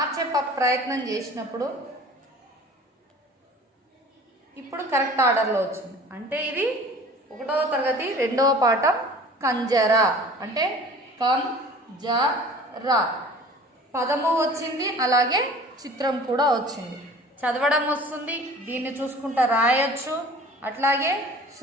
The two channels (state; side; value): normal; both; correlation 0.45